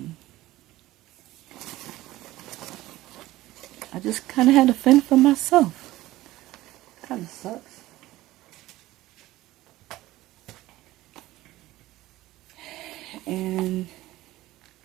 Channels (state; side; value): quieter; left; 16.8 dB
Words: I just kind of had to fend for myself. Kind of sucks. And